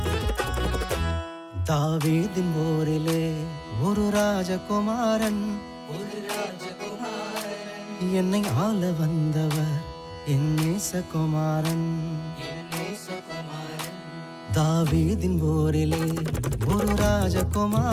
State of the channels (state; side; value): identical; both; correlation 1.00